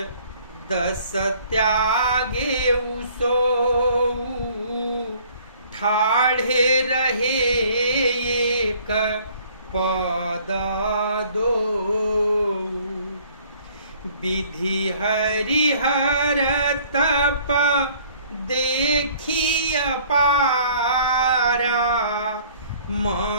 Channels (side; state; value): both; inverted; correlation -0.56